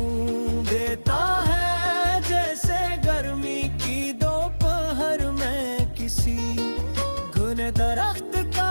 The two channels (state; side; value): inverted; both; correlation -1.00